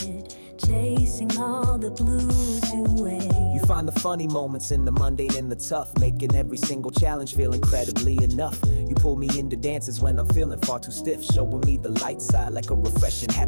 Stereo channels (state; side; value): inverted; both; correlation -1.00